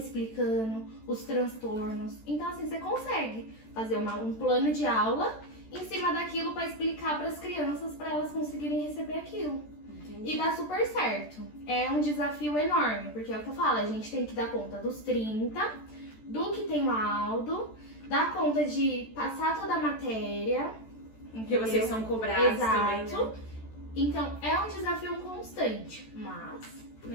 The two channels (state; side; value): late; right; 14 ms